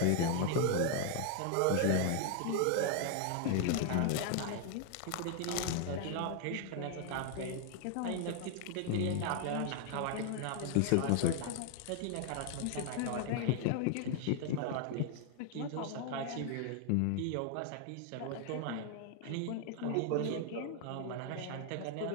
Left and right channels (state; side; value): different; both; correlation 0.00